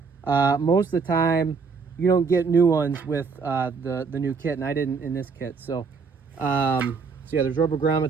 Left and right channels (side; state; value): left; quieter; 5.1 dB